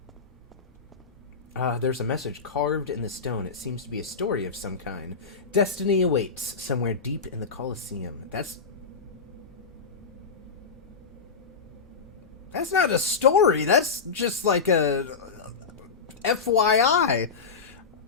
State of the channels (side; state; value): right; quieter; 5.2 dB